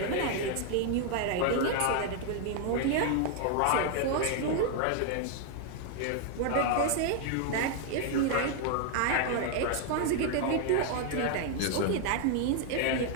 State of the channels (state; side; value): different; both; correlation 0.00